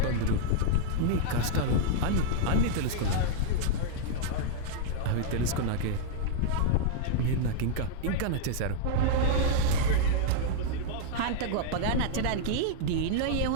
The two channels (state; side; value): different; both; correlation -0.01